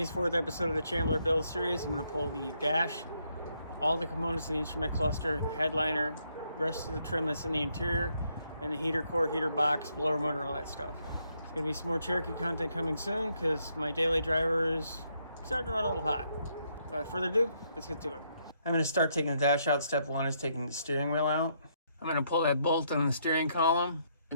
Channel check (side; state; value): both; inverted; correlation -0.74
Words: fourth episode of the Chambler build series, I'm going to pull the dash, all the components of the instrument cluster, the headliner, rest of the trim that's in the interior, and the heater core, heater box, blower motor, all that stuff. There's going to be some more Cherokee content coming soon because my daily driver is starting to run a little hot. Without further ado, let's get to it. I'm going to start taking the dash out. Step one is taking the steering wheel out. I'm going to pull that bolt on the steering column,